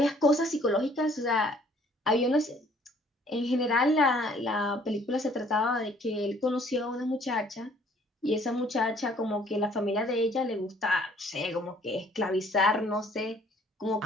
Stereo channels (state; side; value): normal; both; correlation 0.59